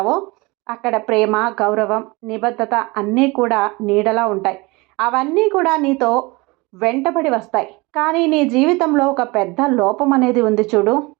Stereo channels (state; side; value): quieter; left; 24.6 dB